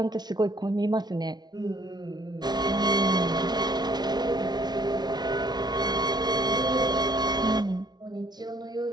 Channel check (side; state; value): left; late; 0.20 ms